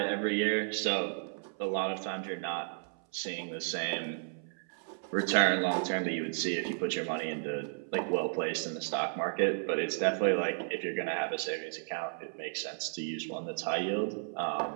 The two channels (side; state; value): left; silent; 56 dB below the other